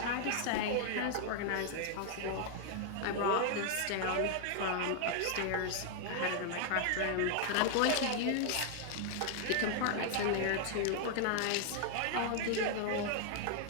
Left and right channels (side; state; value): both; different; correlation 0.00